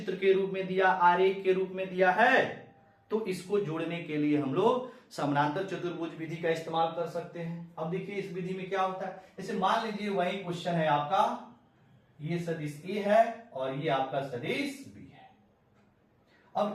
के रूप में दिया, आरेख के रूप में दिया है, तो इसको जोड़ने के लिए हम लोग समानांतर चतुर्भुज विधि का इस्तेमाल कर सकते हैं। अब देखिए इस विधि में क्या होता है, जैसे मान लीजिए वही क्वेश्चन है आपका, ये सदिश A है और ये आपका सदिश B है।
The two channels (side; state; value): both; identical; correlation 1.00